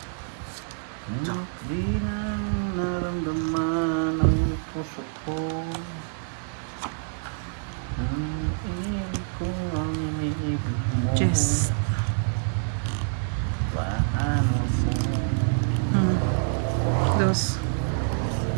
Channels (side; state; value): left; silent; digital silence